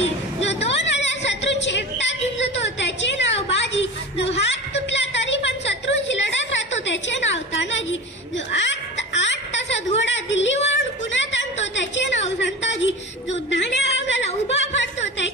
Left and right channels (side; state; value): both; normal; correlation 0.31